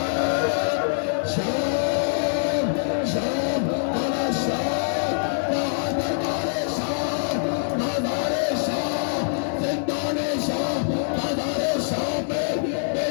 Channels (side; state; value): right; silent; 62 dB below the other